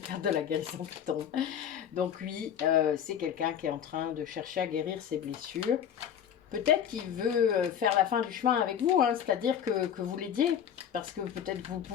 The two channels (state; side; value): quieter; right; 9.0 dB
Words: de la guérison qui tombe. Donc oui, c'est quelqu'un qui est en train de chercher à guérir ses blessures. Peut-être qu'il veut faire la fin du chemin avec vous, hein, c'est-à-dire que vous l'aidiez, parce que peut-être vous